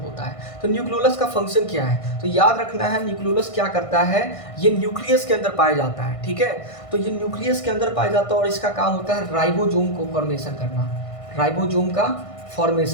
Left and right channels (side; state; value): right; late; 1.5 ms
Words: है। तो न्यूक्लियोलस का फंक्शन क्या है? तो याद रखना है न्यूक्लियोलस क्या करता है? ये न्यूक्लियस के अंदर पाया जाता है। ठीक है, तो ये न्यूक्लियस के अंदर पाया जाता है और इसका काम होता है राइबोसोम को फॉर्मेशन करना, राइबोसोम का